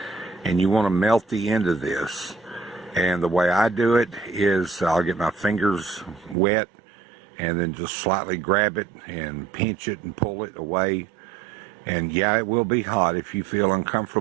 And you want to melt the end of this. And the way I do it is I'll get my fingers wet and then just slightly grab it and pinch it and pull it away. And yeah, it will be hot. If you feel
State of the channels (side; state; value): left; drops out; at 6.4 s